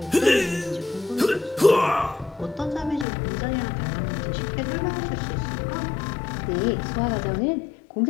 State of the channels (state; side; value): drops out; right; at 3.1 s